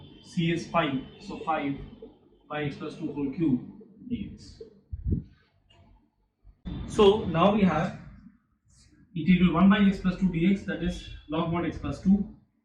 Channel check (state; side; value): identical; both; correlation 1.00